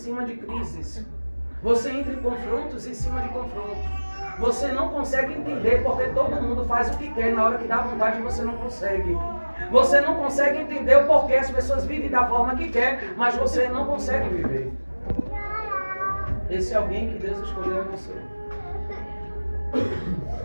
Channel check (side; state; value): both; inverted; correlation -1.00